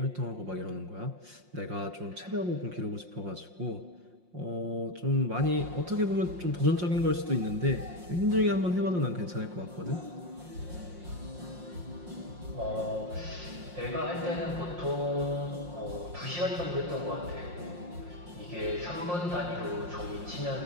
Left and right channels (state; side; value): late; left; 5.6 ms